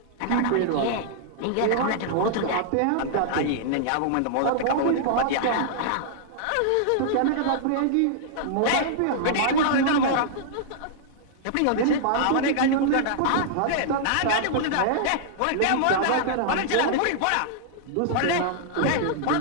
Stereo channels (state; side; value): different; both; correlation -0.01